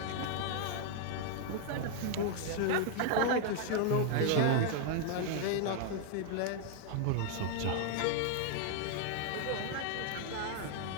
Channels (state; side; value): different; both; correlation 0.00